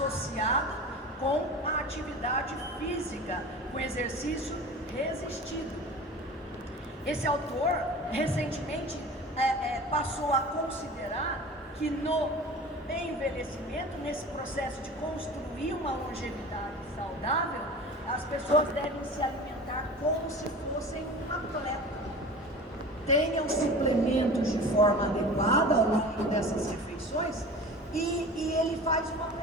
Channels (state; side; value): normal; both; correlation 0.37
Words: com a atividade física, com exercício resistido. Esse autor recentemente passou a considerar que no envelhecimento, nesse processo de construir uma longevidade saudável, as pessoas devem se alimentar como se fossem um atleta. Tenham suplementos de forma adequada ao longo dessas refeições. E ele faz uma